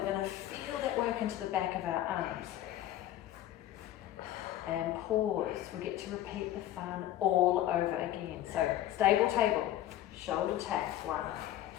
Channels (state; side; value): quieter; right; 13.1 dB